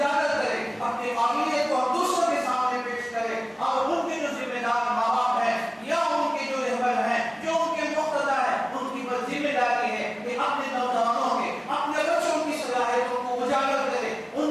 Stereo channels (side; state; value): both; identical; correlation 1.00